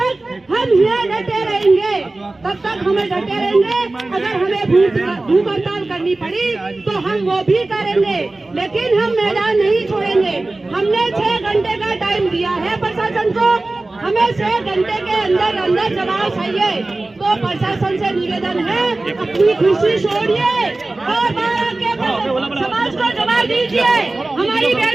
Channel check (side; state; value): left; quieter; 3.0 dB